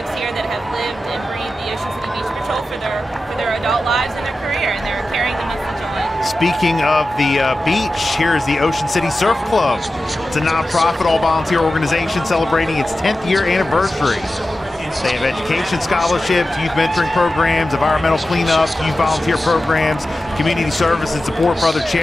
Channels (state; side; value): normal; both; correlation 0.93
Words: here that have lived and breathed the Ocean City Beach Patrol for their adult lives and their career, and they're carrying the message on. Speaking of the beach, here is the Ocean City Surf Club. It's a nonprofit, all-volunteer organization celebrating its 10th year anniversary. They have education scholarships, youth mentoring programs, environmental cleanup, youth volunteer programs, community service and support for other